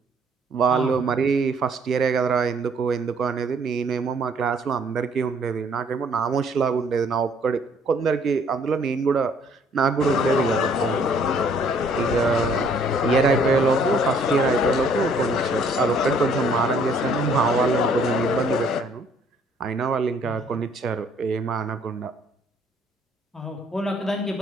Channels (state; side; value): normal; both; correlation 0.62